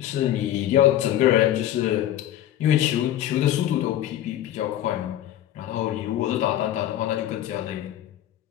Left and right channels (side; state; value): right; quieter; 12.4 dB